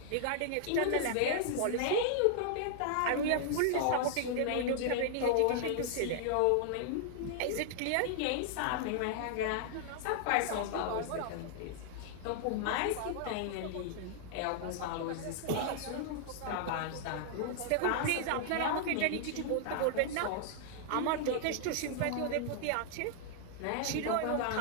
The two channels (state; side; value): different; both; correlation -0.01